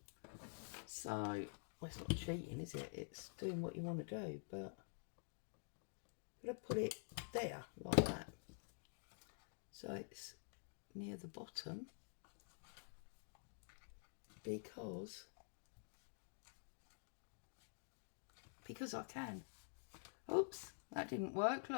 So, well, it's not cheating, is it? It's doing what you want to do, but I'm going to put it there, like that. So it's near the bottom, because I can. Oops, that didn't work.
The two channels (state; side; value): silent; right; digital silence